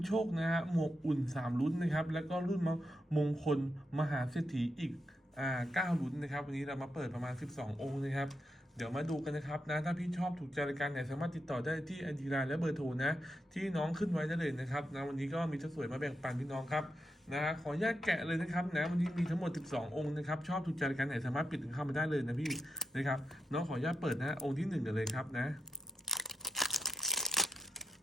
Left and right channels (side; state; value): both; normal; correlation 0.84